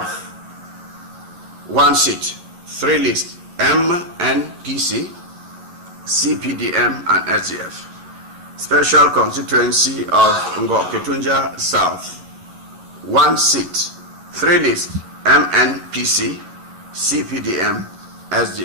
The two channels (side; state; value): left; late; 11 ms